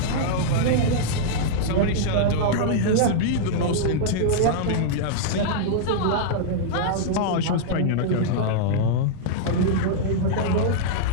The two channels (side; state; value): both; different; correlation -0.02